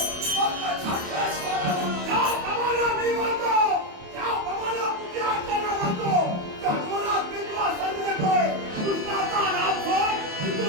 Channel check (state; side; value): late; left; 28 ms